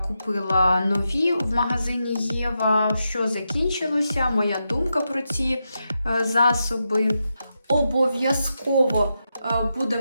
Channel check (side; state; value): both; inverted; correlation -0.86